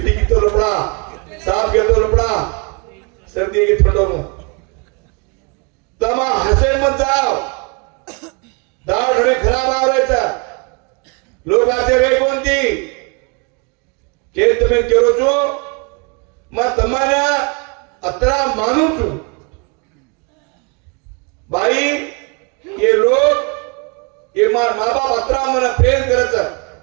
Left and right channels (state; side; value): quieter; left; 32.3 dB